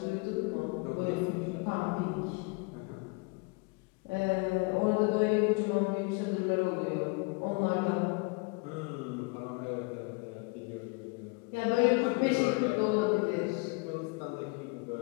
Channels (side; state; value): right; quieter; 29.6 dB